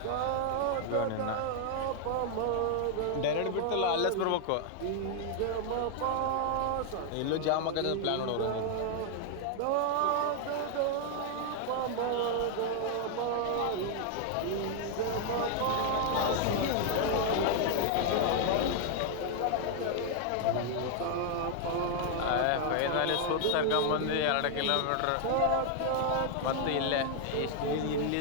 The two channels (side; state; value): both; different; correlation 0.00